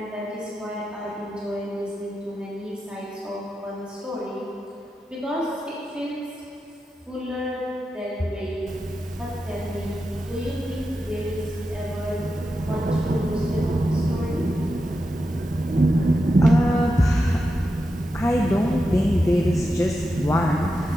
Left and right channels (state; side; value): normal; both; correlation 0.89